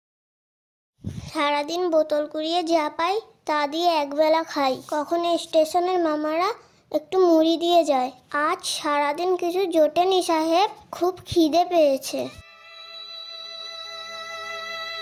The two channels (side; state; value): both; identical; correlation 1.00